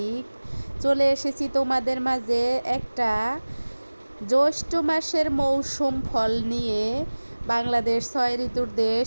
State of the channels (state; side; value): inverted; both; correlation -1.00